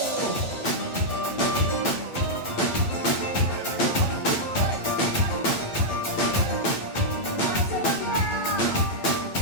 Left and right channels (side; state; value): right; late; 8.9 ms